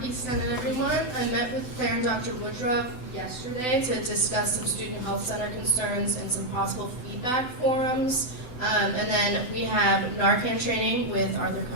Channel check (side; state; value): right; late; 7.9 ms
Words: Senate, everyone. I met with Claire and Dr. Woodruff yesterday to discuss some student health center concerns and some possible feedback forums. And then we have Narcan training with Arthur